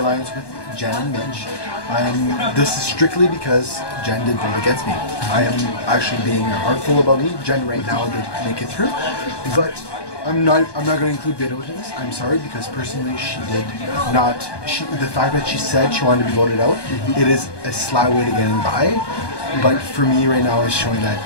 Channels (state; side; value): late; right; 1.2 ms